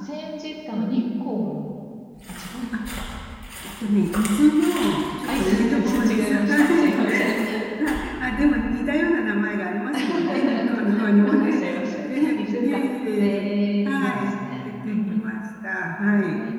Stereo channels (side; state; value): both; identical; correlation 1.00